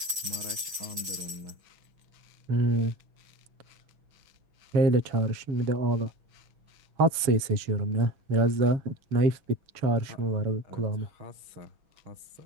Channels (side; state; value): left; late; 6.7 ms